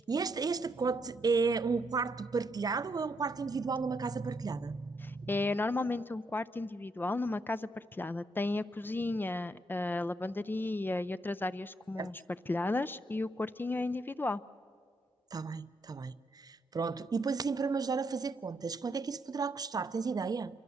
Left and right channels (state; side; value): normal; both; correlation 0.76